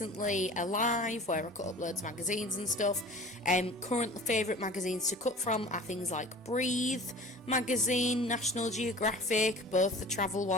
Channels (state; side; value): normal; both; correlation 0.41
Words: a live where I cut up loads of magazines and stuff. Current favourite magazines to cut from are things like Breathe magazine, National Geographic, both the travel